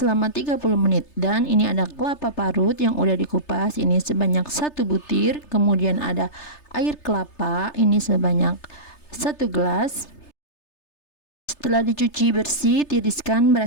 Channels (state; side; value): late; right; 3.3 ms